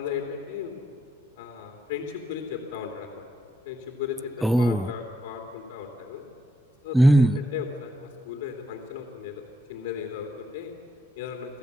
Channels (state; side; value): normal; both; correlation 0.79